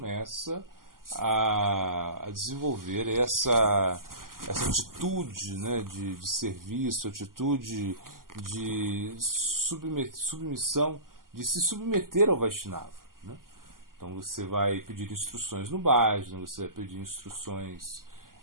a desenvolver essa atitude, né, de serviço, atitude de submissão, de se submeter ao Vaishnava. Né? Então você vai pedir instruções no bhajana, você vai pedir instruções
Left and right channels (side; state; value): left; late; 0.91 ms